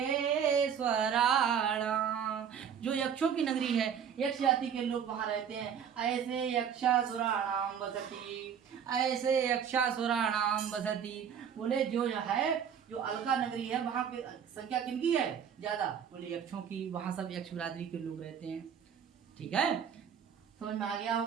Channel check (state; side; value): quieter; left; 8.0 dB